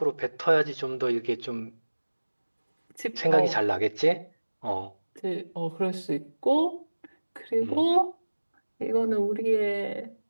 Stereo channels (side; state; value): both; inverted; correlation -1.00